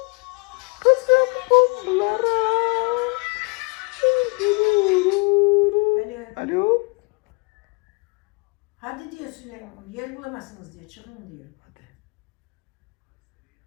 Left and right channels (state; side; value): quieter; right; 31.0 dB